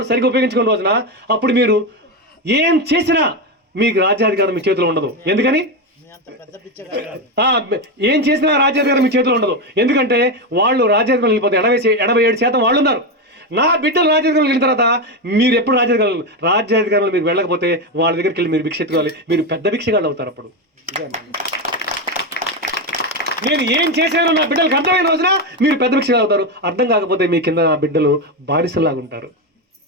సరిగ్గా ఉపయోగించుకున్న రోజున అప్పుడు మీరు ఏం చేసినా మీకు రాజ్యాధికారం మీ చేతిలో ఉండదు. ఎందుకని? ఏం చేసినా రాజ్యాధికారం మీ చేతిలో ఉండదు. ఎందుకంటే వాళ్ళు రాజ్యాధికారం వెళ్ళిపోతే 87% వాళ్ళు ఉన్నారు. నా బిడ్డలు రాజ్యాధికారులు వెళ్ళిన తర్వాత మీరు ఎప్పుడు రాజ్యాధికారులు మీరు వెళ్ళకపోతే వాళ్ళ దగ్గరికి వెళ్ళి మీరు భిక్ష ఎత్తుకోవాలి. మీరు పెద్ద భిక్షగాళ్ళు అవుతారు. అప్పుడు నేను ఏం చేశానో నా బిడ్డలకు అర్థమైన రోజున మీరు పెద్ద భిక్షగాళ్ళు అవుతారు. అర్థం కాకపోతే మీ కింద నా బిడ్డలు బానిసలాగా ఉంటారు.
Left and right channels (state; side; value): normal; both; correlation 0.12